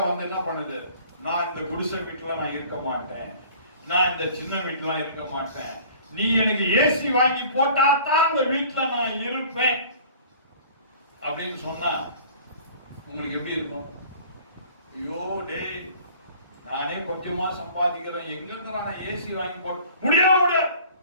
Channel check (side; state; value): both; inverted; correlation -0.48